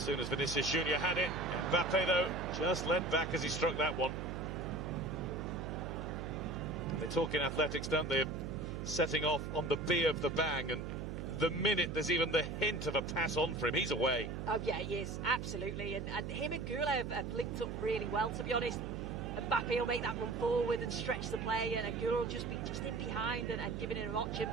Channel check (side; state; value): right; noise; hum, 5 dB below the sound